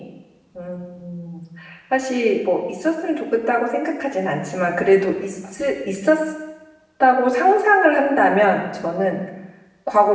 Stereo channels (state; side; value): identical; both; correlation 1.00